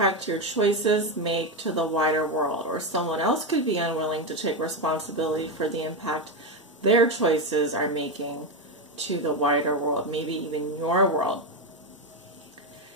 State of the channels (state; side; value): normal; both; correlation 0.11